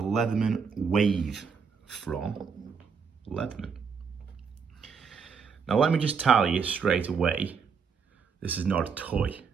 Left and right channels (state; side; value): quieter; left; 6.0 dB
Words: Leatherman Wave from Leatherman. Now let me just tell you straight away, this is not a toy.